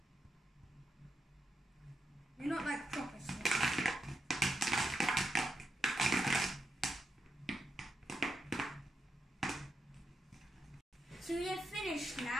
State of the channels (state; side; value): normal; both; correlation 0.85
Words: You're not like proper slime. So we're finished